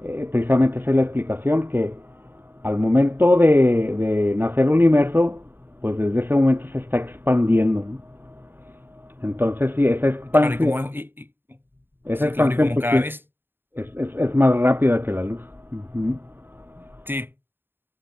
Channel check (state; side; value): late; left; 0.10 ms